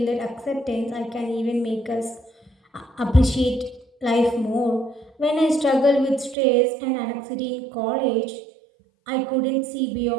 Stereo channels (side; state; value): left; drops out; at 6.4 s